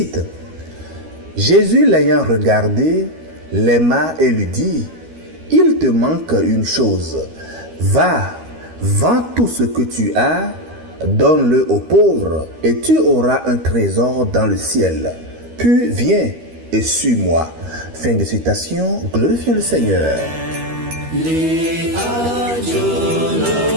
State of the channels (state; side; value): late; left; 13 ms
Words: Jésus l'ayant regardé, l'aima et lui dit, « Il te manque une chose. Va, vends tout ce que tu as, donne-le aux pauvres, et tu auras un trésor dans le ciel. Puis viens et suis-moi. » Fin de citation, glorifions le Seigneur.